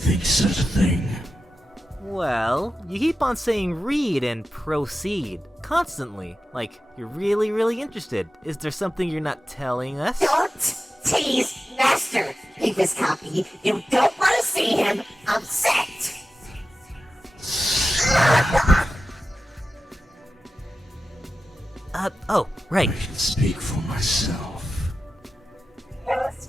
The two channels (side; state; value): both; normal; correlation 0.93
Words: such a thing? Well, you keep on saying read and proceed constantly. Like, you're really interested. Is there something you're not telling us? Don't tease Master. Read this copy. You don't want to see him upset. Oh, right. I can speak for myself. Yes,